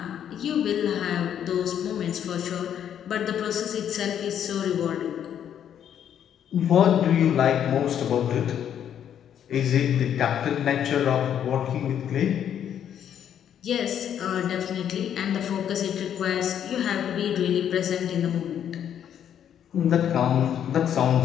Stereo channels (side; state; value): right; quieter; 9.5 dB